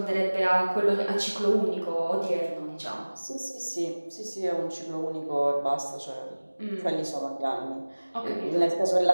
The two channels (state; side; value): inverted; both; correlation -1.00